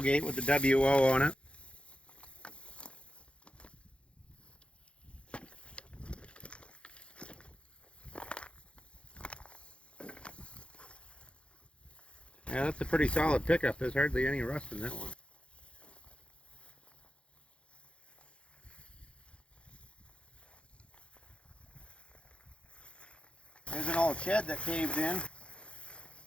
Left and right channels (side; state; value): right; late; 0.058 ms